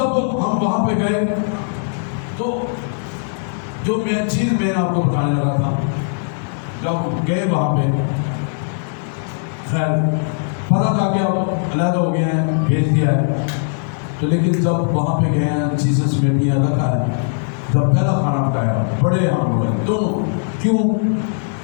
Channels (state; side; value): silent; right; 67 dB below the other